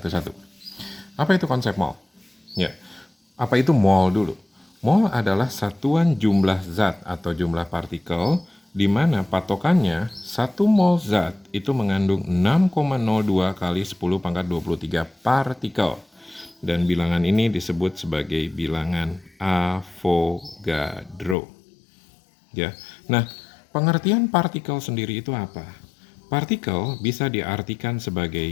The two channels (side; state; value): right; drops out; at 21.4 s